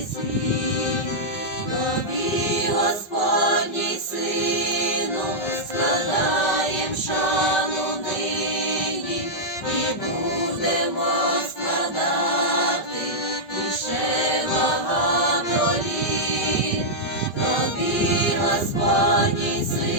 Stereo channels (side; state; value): right; late; 5.3 ms